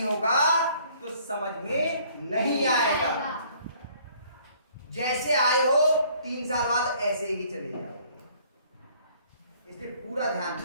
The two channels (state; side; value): inverted; both; correlation -0.59